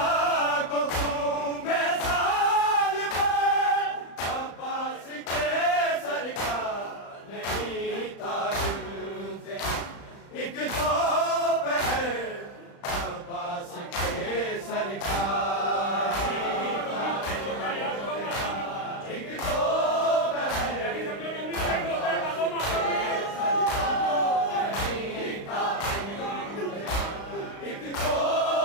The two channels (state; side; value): late; right; 35 ms